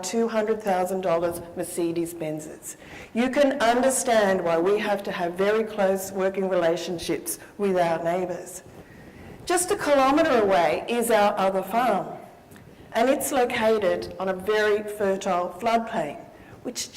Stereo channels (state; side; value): identical; both; correlation 1.00